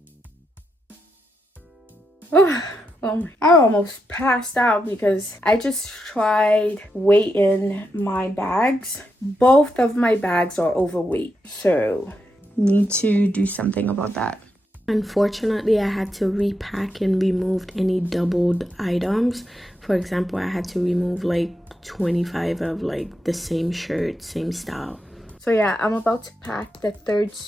I almost passed out because I just tried weighing my bags. Both of my bags are overweight, so need to do something about that. Unfortunately, I had to repack and remove any doubled items. For example, I had to remove like 25 of like the same shirt, same style. So yeah, I'm about to pack the third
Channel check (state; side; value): normal; both; correlation 0.84